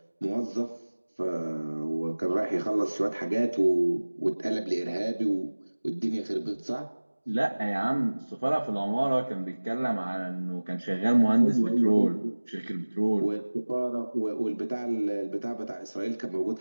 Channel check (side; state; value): both; inverted; correlation -1.00